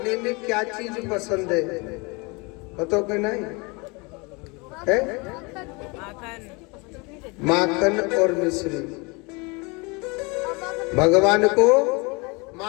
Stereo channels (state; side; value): quieter; right; 28.1 dB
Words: में क्या चीज पसंद है बताओ कि नहीं है? माखन और मिश्री। भगवान को